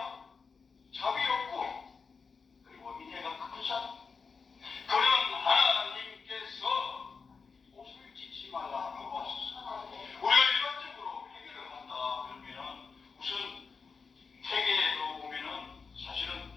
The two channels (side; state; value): right; quieter; 5.1 dB